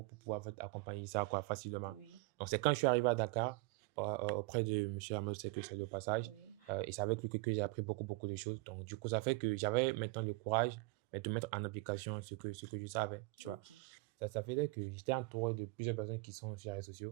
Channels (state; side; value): quieter; left; 24.6 dB